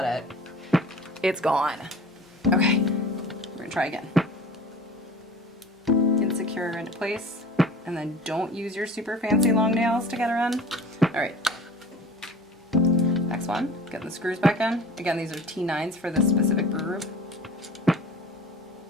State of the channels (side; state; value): both; normal; correlation 0.42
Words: it. It's gone. Okay, we're gonna try again. Get secure her into place, and then don't use your super fancy long nails to get her in. All right. Next one, getting the screws back in. Again, these are T9s for this specific brew group.